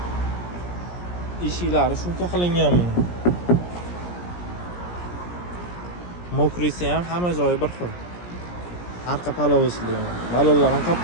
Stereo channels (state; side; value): late; right; 17 ms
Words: Eshiklari shuncha qilingan buni. Mokrisi ham hamma joyi bir xil. Arqa polosli. Balonlar ham